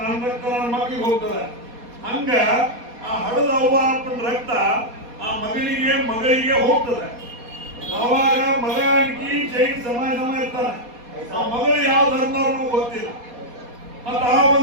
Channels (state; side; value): late; left; 4.2 ms